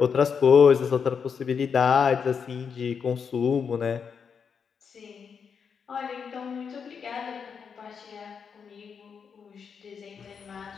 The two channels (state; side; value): quieter; right; 6.5 dB